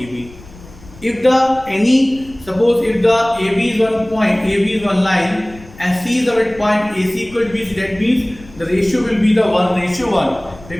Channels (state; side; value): noise; left; rumble, 21 dB below the sound